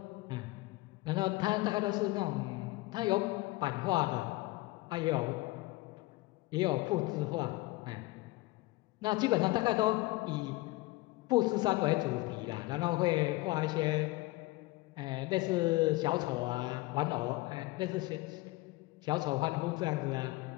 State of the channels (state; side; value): quieter; right; 20.5 dB